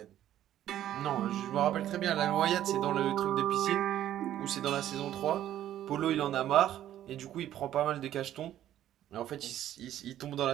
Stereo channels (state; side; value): quieter; left; 12.0 dB